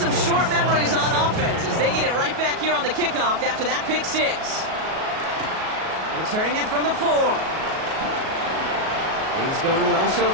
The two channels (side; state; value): left; late; 37 ms